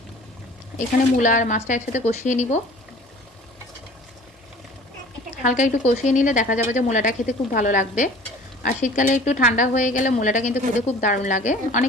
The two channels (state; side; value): normal; both; correlation 0.46